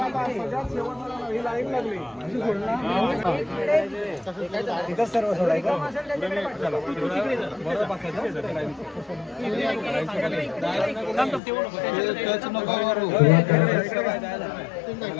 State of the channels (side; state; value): right; drops out; at 11.4 s